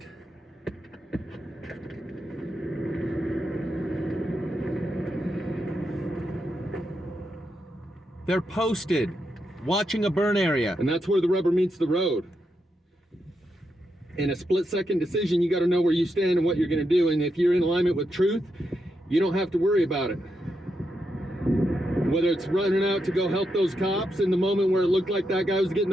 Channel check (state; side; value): normal; both; correlation 0.84